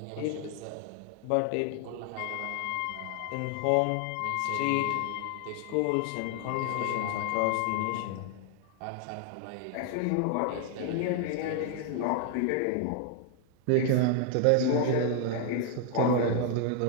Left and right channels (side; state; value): both; different; correlation 0.00